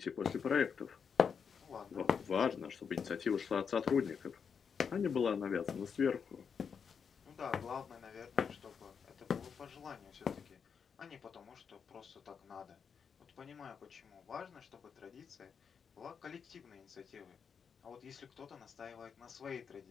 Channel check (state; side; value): quieter; right; 6.6 dB